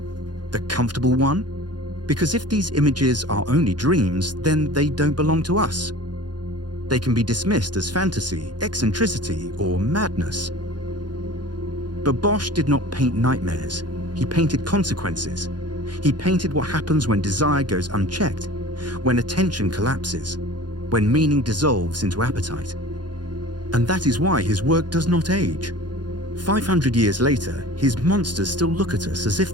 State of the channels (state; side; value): late; left; 0.70 ms